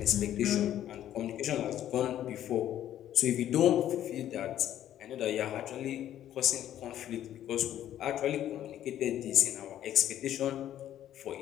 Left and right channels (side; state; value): right; quieter; 11.7 dB